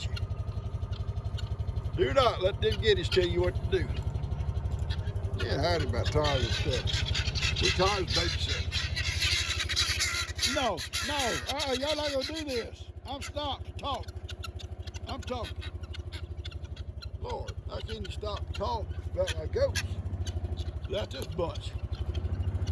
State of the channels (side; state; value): both; identical; correlation 1.00